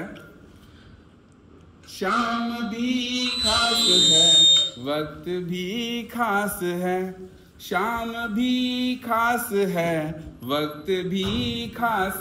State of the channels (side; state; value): both; identical; correlation 1.00